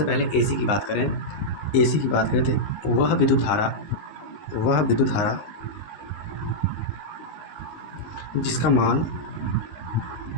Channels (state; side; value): late; right; 19 ms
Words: पहले एसी की बात करें, एसी की बात करें तो वह विद्युत धारा जिसका